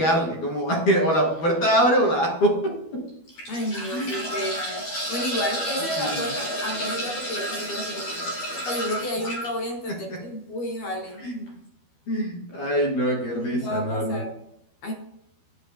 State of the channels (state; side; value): late; right; 12 ms